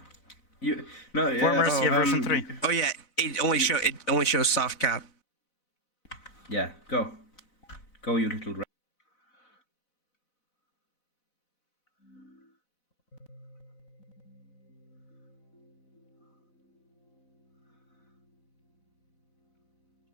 Fort Mercia version 3. Oh yeah, it only shows soft cap. Yeah, go, you little rat.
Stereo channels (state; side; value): late; right; 4.0 ms